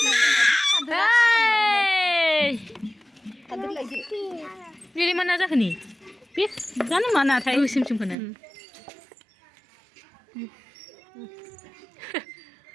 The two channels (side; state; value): left; drops out; at 8.2 s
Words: बेलाय मा ना जाखो नि बे जानो मा नाथाय गोसोमखौनो